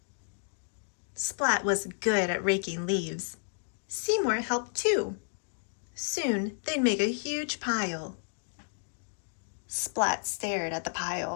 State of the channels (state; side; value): silent; right; digital silence